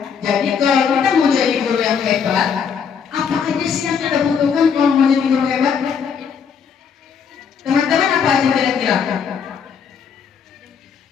Jadi kalau kita mau jadi guru yang hebat, apa aja sih yang kita butuhkan kalau mau jadi guru hebat? Teman-teman apa aja kira-kira?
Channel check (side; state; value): right; quieter; 6.8 dB